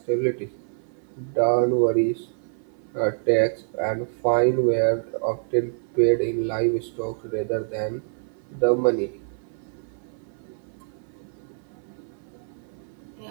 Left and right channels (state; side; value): silent; left; 56 dB below the other